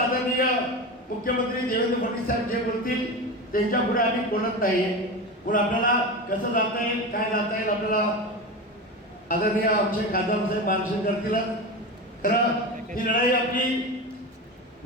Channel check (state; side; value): normal; both; correlation 0.24